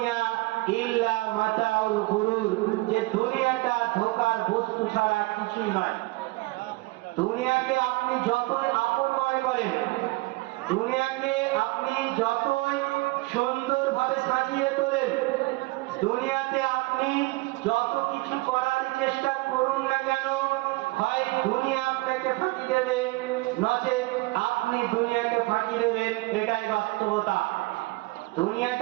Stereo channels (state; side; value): quieter; left; 22.8 dB